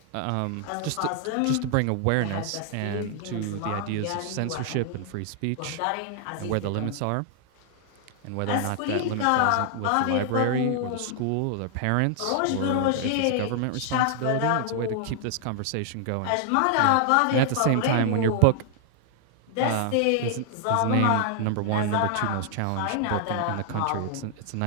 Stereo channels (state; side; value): different; both; correlation 0.00